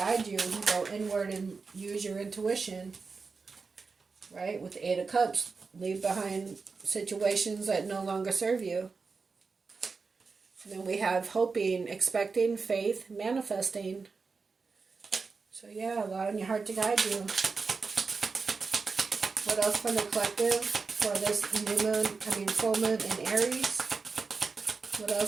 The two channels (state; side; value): quieter; left; 4.6 dB